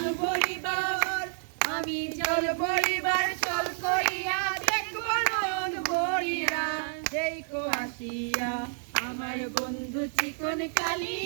ভরিবার আমি জল ভরিবার চল করিয়া দেখব নয়ন ভরিয়া দেখো আসিয়া আমার বন্ধু চিকন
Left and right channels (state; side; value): silent; left; digital silence